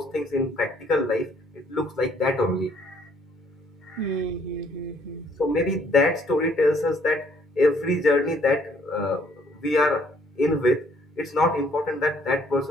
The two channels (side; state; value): both; normal; correlation 0.64